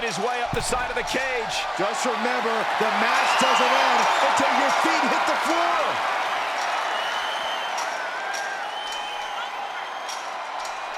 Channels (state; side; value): identical; both; correlation 1.00